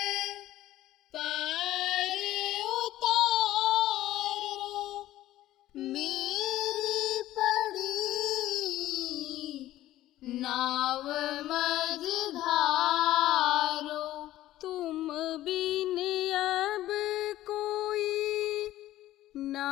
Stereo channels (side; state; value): right; quieter; 14.6 dB